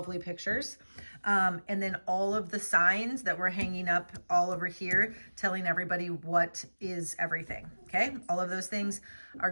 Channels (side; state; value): both; inverted; correlation -1.00